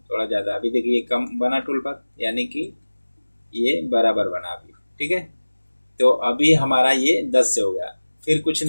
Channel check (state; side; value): inverted; both; correlation -1.00